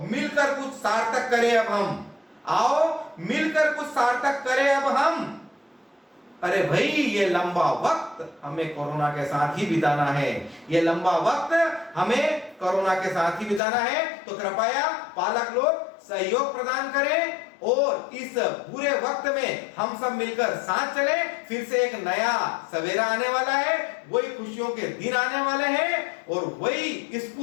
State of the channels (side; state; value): right; drops out; at 13.6 s